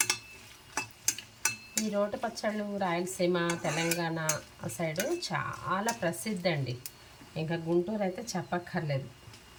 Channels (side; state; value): both; identical; correlation 1.00